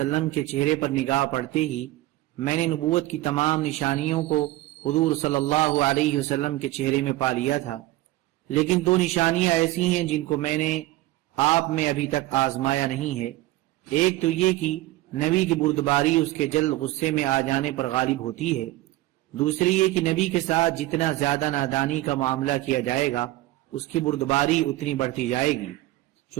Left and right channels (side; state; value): left; quieter; 17.3 dB